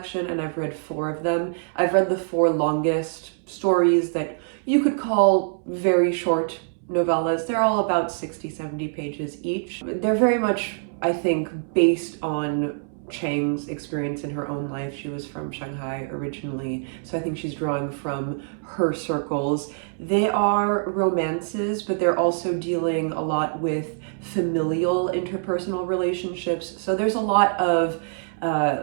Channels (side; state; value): left; silent; 62 dB below the other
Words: and I've read 4 of them. I've read the 4 longest stories that you could call very short novellas. They're all about 60-70 pages each. They're very much, I think, based on Chang's experience in her own life. She was from Shanghai originally, so I think she's drawing from her circles. They are romances, but they're also dealing a lot with familial interpersonal relationships. So there's a lot of